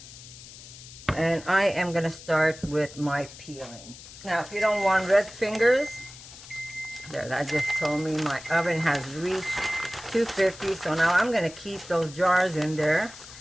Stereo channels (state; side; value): noise; left; hiss, 17 dB below the sound